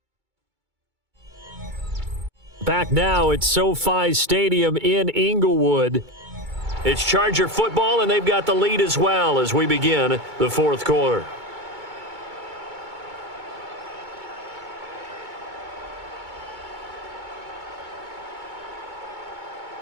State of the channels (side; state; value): left; late; 2.2 ms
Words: Back now at SoFi Stadium in Inglewood. It's Charger football, and they've got the lead as well as we begin the 4th quarter.